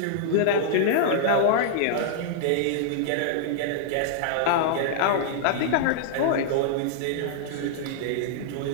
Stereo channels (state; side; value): different; both; correlation -0.01